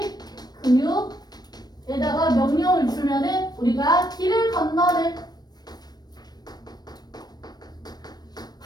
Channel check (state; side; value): late; right; 0.19 ms